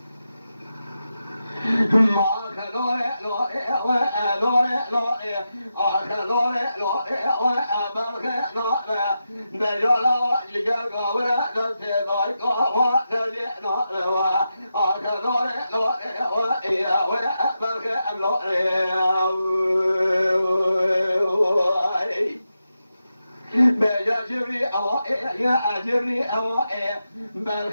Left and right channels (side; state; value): both; inverted; correlation -0.89